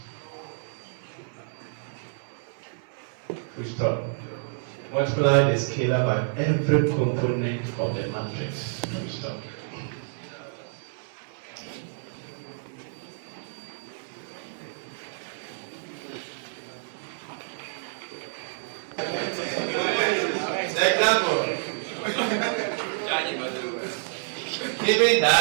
We stop. Multiply the scalar by every component of the matrix. We stop. Example. Given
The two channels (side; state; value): left; silent; 59 dB below the other